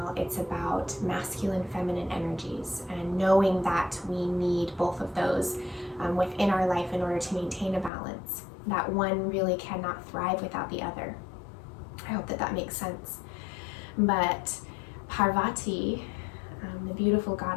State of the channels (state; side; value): drops out; right; at 7.9 s